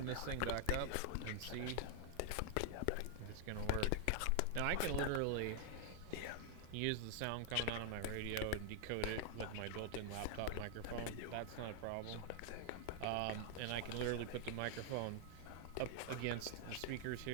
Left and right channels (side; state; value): both; different; correlation 0.00